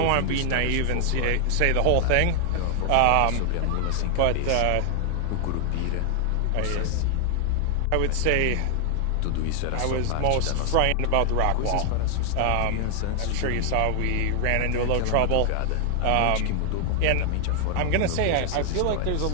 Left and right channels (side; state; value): both; different; correlation 0.00